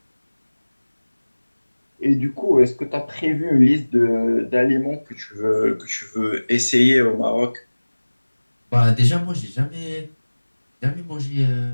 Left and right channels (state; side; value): inverted; both; correlation -1.00